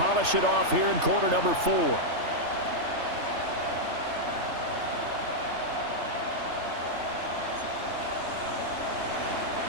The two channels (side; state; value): left; late; 3.3 ms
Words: it off here in quarter number 4.